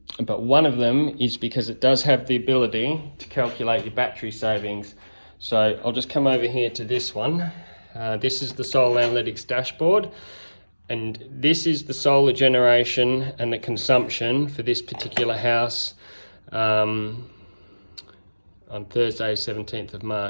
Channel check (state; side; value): inverted; both; correlation -1.00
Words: one of them is because it does have the ability to calculate your battery savings. So I'll just come over here to this one. This is the Solar Analytics dashboard. And this is the solar generation and the consumption for this particular house on Thursday, 17th of